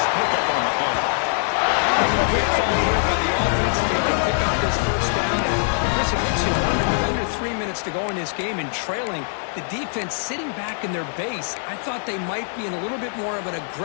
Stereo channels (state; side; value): silent; right; 64 dB below the other